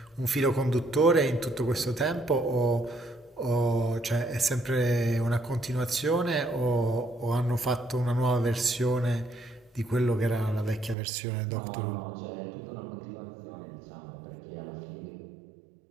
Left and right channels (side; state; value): left; drops out; at 11.0 s